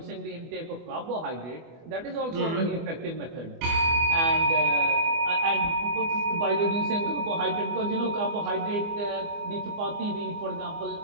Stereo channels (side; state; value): left; late; 24 ms